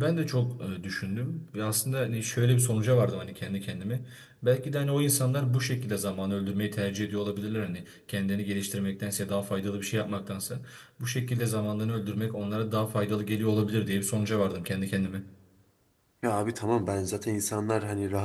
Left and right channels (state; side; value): identical; both; correlation 1.00